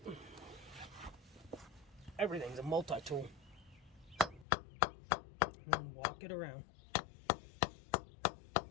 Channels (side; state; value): right; drops out; at 4.5 s